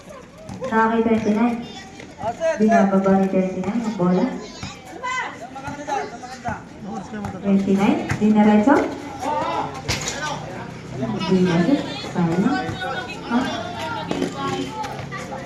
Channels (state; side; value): identical; both; correlation 1.00